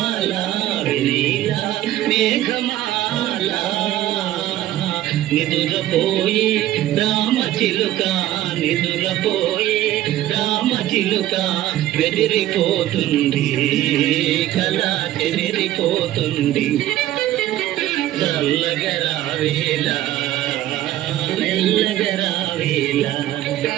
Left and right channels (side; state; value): left; quieter; 13.9 dB